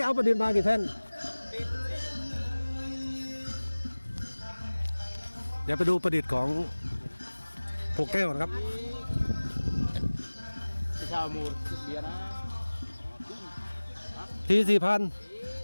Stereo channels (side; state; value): both; inverted; correlation -1.00